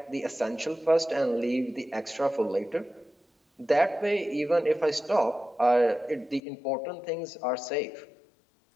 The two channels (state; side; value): drops out; right; at 6.4 s